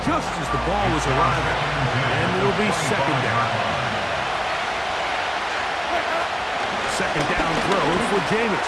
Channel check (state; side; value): identical; both; correlation 1.00